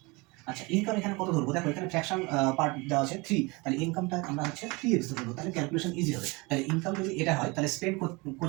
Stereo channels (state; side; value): quieter; left; 26.1 dB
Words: আচ্ছা ইনকাম এখানে কত ধরবো, দেখো এখানে ফ্র্যাকশন পার্ট দেওয়া আছে 3, তাহলে ইনকামটা আমরা হচ্ছে 3x ধরবো, তাহলে ক্যালকুলেশন ইজি হবে। তাহলে ইনকাম যদি এটা হয় তাহলে স্পেন্ড